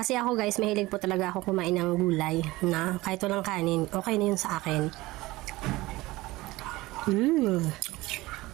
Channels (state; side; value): quieter; left; 19.5 dB